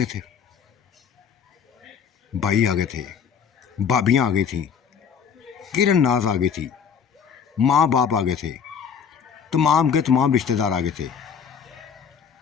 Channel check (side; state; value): right; quieter; 7.2 dB